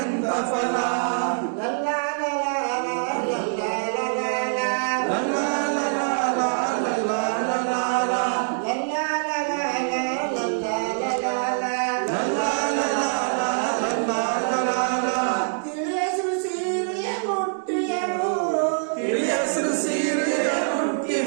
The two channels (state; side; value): silent; left; digital silence